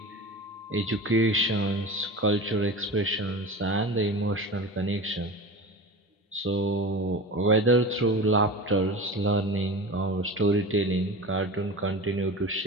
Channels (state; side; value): normal; both; correlation 0.31